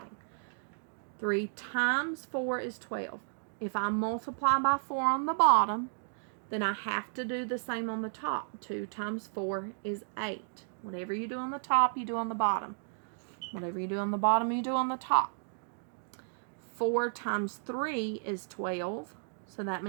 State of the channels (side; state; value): left; silent; digital silence